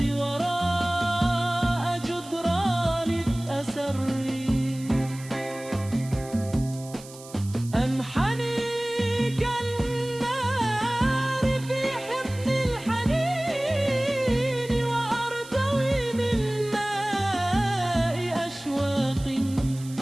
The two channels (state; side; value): noise; right; hiss, 18 dB below the sound